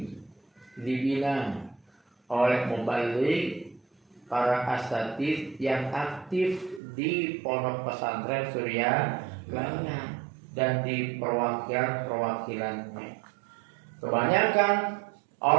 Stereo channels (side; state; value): left; drops out; at 6.8 s